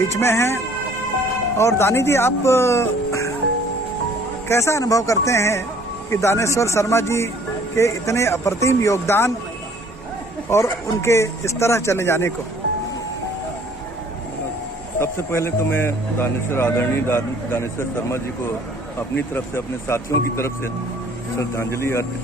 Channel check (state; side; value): normal; both; correlation 0.57